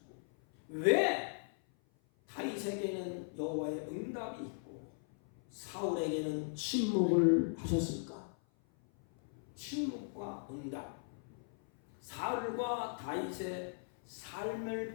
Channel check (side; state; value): right; silent; 52 dB below the other